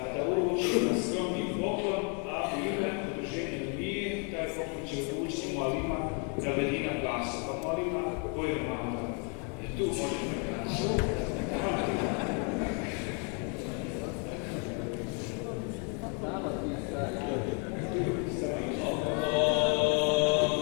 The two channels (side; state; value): right; quieter; 37.7 dB